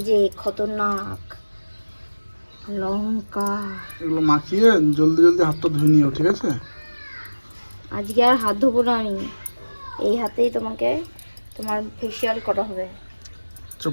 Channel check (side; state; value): both; inverted; correlation -1.00